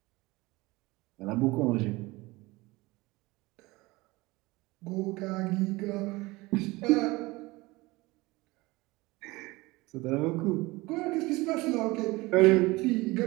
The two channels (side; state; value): left; quieter; 21.8 dB